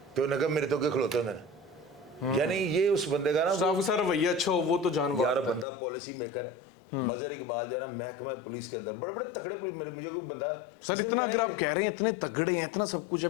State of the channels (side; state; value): right; drops out; at 5.7 s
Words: तो उन्हें कहा मेरे तो के खिलोते होंगे। यानी ये उस बंदे का ना सर रवैया अच्छा हो, वो तो जान यार बंदा पॉलिसी मेकर है। मजहर इकबाल जो है ना, महकमा पुलिस के अंदर बड़े बड़े तगड़े पुलिस, मुझे कोई बंदा सर इतना आप कह रहे हैं इतने तगड़े हैं, इतना सब कुछ है,